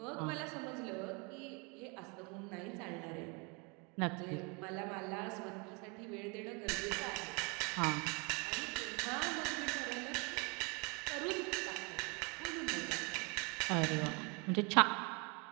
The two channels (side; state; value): left; quieter; 31.2 dB